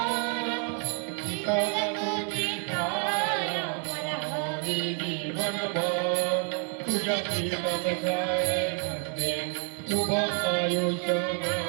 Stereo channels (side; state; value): left; quieter; 38.6 dB